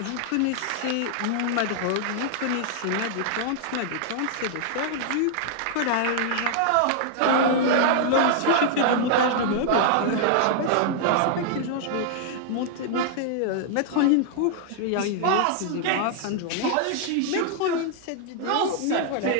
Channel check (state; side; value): different; both; correlation -0.01